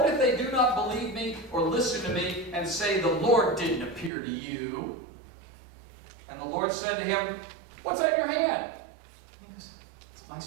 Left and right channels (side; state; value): left; drops out; at 4.1 s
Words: if they do not believe me or listen to me and say, the Lord didn't appear to you? And the Lord said to him, what's that in your hand? He goes, it's my